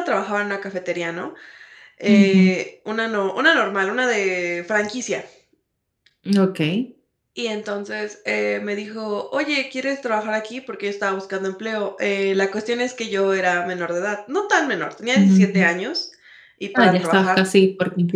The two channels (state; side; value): identical; both; correlation 1.00